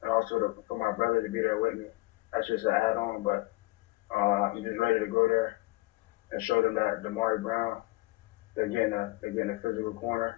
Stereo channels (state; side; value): quieter; right; 21.8 dB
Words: and also for my brother to be there with me. That's just an add-on, but I'm just ready to go there and show them that Damari Brown, they're getting a physical